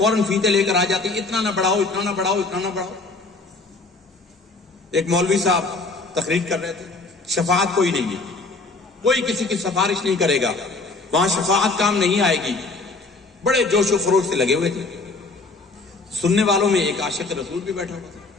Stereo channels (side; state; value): right; quieter; 3.6 dB